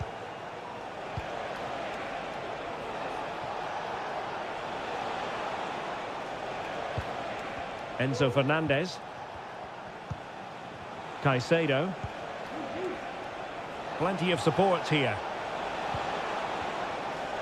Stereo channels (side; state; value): both; identical; correlation 1.00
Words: Enzo Fernandez. Caicedo. Plenty of support here.